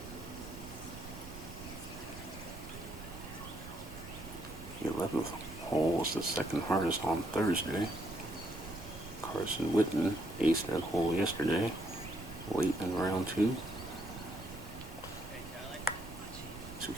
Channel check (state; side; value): noise; right; rumble, 13 dB below the sound